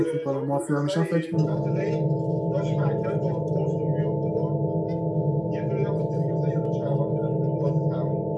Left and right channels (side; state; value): both; identical; correlation 1.00